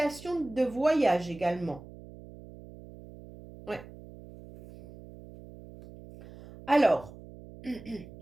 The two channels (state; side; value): noise; right; hum, 17 dB below the sound